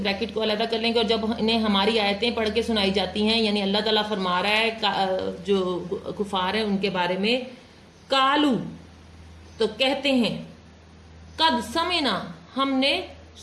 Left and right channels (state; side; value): identical; both; correlation 1.00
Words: کو علیحدہ کر لیں گے، اور جب انہیں ہماری آیتیں پڑھ کے سنائی جاتی ہیں یعنی اللہ تعالیٰ فرما رہا ہے جو کفار ہیں ان کے بارے میں، کالو تو کہتے ہیں، قد سمعنا ہم نے